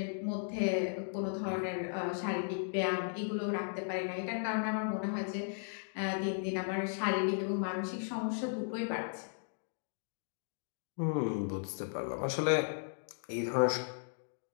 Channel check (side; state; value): right; silent; digital silence